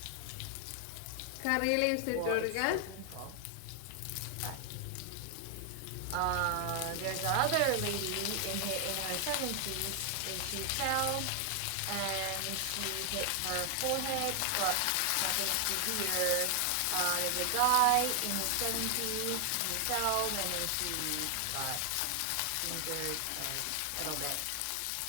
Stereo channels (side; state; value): both; different; correlation 0.00